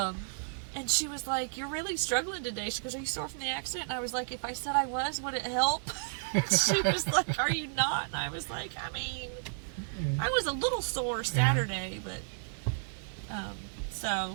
And she was like, you're really struggling today. She goes, are you sore from the accident? And I was like, if I said I was, would it help? She was like, are you not? And I was like, I mean, I was a little sore Saturday, but,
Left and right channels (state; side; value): silent; left; 56 dB below the other